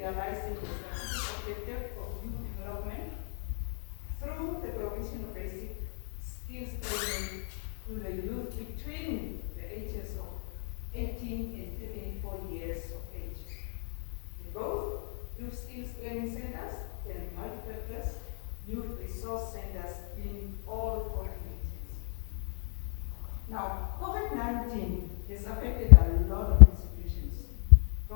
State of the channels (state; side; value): silent; right; 56 dB below the other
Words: the strategic objective of youth development through the provision of basic skills training to the youth between the ages of 18 and 34 years of age. In both youth skills training centers and multipurpose youth resource centers in all 40 regions. Now, COVID-19 has affected a lot of institutions,